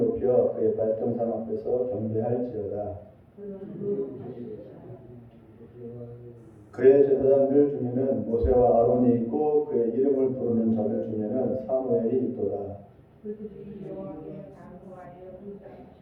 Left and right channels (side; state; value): both; identical; correlation 1.00